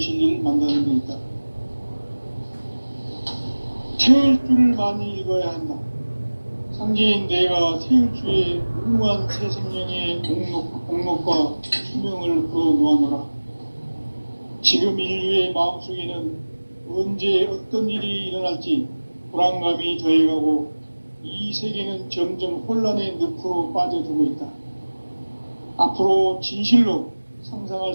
만나는 데 있다. 태을 줄을 많이 읽어야 한다. 상제인 내가 태을 주에 무궁한 새 생명의 공록과 수명을 불어 놓아노라. 지금 인류의 마음속에는 언제 어떤 일이 일어날지 불안감이 더해가고 이 세계는 점점 혼란의 늪으로 빠져들고 있다. 앞으로 진실로 상상할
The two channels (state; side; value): inverted; both; correlation -1.00